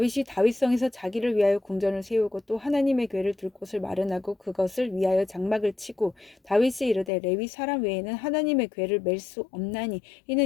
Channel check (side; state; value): right; drops out; at 7.1 s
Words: 다윗성에서 자기를 위하여 궁전을 세우고 또 하나님의 궤를 둘 곳을 마련하고 그것을 위하여 장막을 치고 다윗이 이르되 레위 사람 외에는 하나님의 궤를 맬 수 없나니